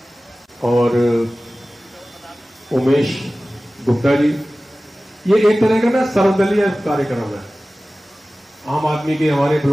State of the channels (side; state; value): both; normal; correlation 0.97